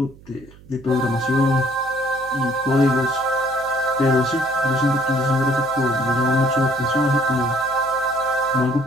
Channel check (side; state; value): right; noise; hum, 23 dB below the sound